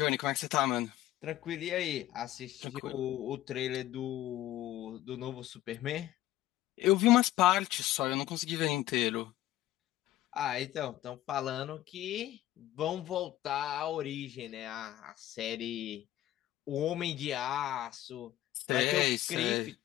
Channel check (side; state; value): right; quieter; 14.3 dB